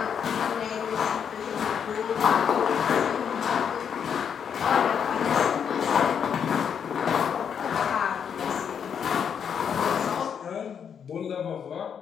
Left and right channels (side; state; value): right; quieter; 7.6 dB